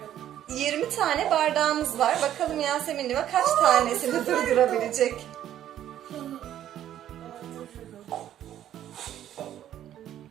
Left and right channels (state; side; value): quieter; left; 11.4 dB